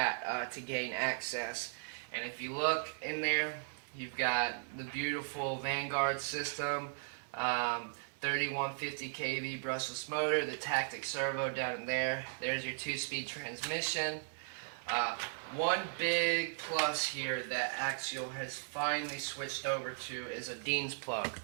to gain access. And if you look in there, you've got the beautiful Vanguard system, 3150 kV brushless motor, the Tactic servo down in there. There's your 2-speed transmission. One big plus here that Axial has finally switched over to is a Dean's plug.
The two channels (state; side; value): silent; left; 53 dB below the other